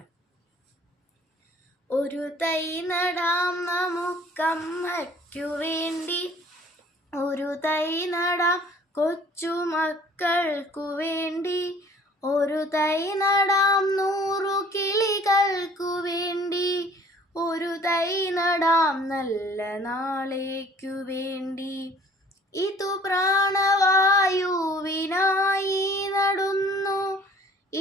ഒരു തൈ നടാം നമുക്കമ്മയ്ക്കു വേണ്ടി, ഒരു തൈ നടാം കൊച്ചുമക്കൾക്കു വേണ്ടി, ഒരു തൈ നടാം 100 കിളികൾക്കു വേണ്ടി, ഒരു തൈ നടാം നല്ല നാളേക്കു വേണ്ടി. ഇതു പ്രാണവായുവിനായി നടുന്നു,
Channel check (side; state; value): both; normal; correlation 0.53